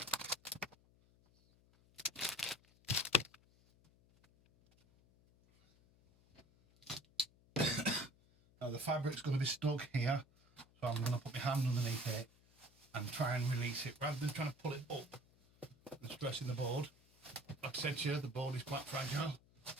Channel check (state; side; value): noise; left; hum, 29 dB below the sound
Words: Now the fabric's going to be stuck here, so I'm going to put my hand underneath it and try and release it rather than trying to pull it up and stressing the board. Like I said to you, the board is quite fragile.